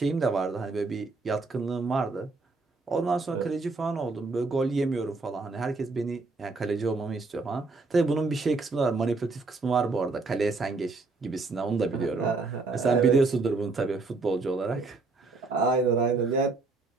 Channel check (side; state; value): left; quieter; 3.8 dB